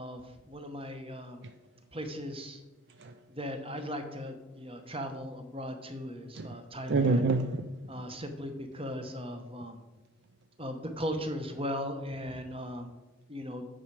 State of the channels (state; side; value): normal; both; correlation 0.45